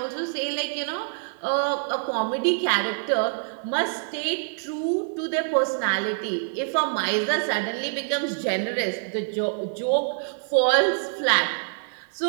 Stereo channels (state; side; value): silent; left; digital silence